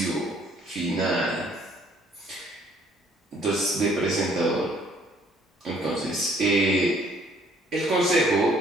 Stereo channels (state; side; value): normal; both; correlation 0.61